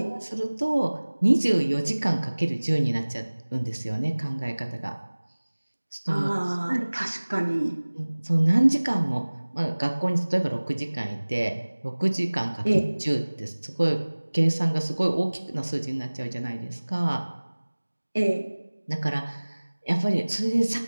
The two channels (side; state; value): both; inverted; correlation -1.00